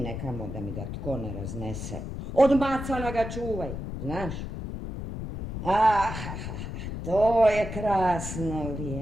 nekamo da mi ga tko ne raznese. Od macana ga čuvaj, znaš? To je krasno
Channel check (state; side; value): noise; left; rumble, 6 dB below the sound